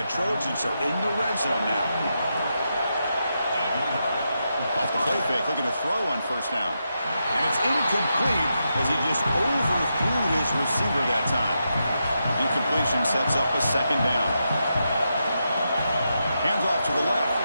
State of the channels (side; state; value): both; inverted; correlation -0.85